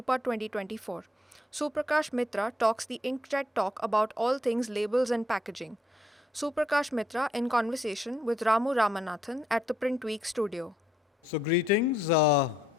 2024. Suprakash Mitra talks the inkjet talk about all things labels and packaging. Suprakash Mitra in conversation with Ramu Ramanathan at the PrintWeek Studio. So greetings.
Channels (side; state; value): both; normal; correlation 0.73